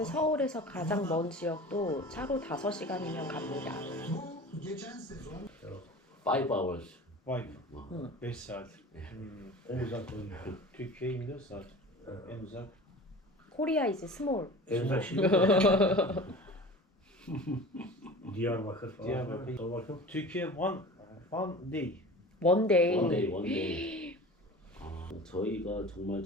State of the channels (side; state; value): both; normal; correlation 0.38